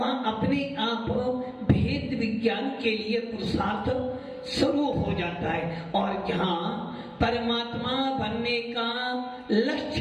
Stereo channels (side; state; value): both; identical; correlation 1.00